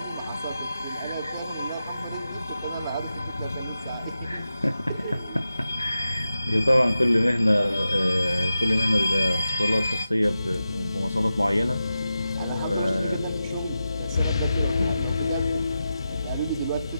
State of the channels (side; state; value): both; inverted; correlation -0.91